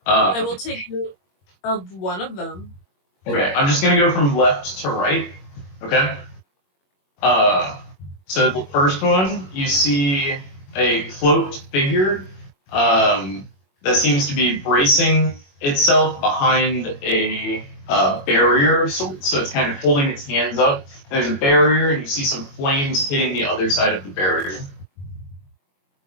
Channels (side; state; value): right; late; 22 ms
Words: I will take note of one of them. Okay, I'm just gonna go from left to right. Okay. So the first one, you see a cloaked figure that seems to be bracing itself behind a barrier of sorts. So it's kind of holding its hands up. There's a barrier, and you see some flames hitting the other side of the barrier.